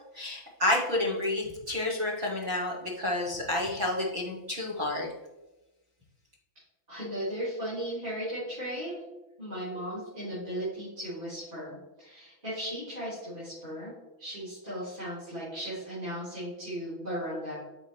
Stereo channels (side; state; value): left; late; 6.0 ms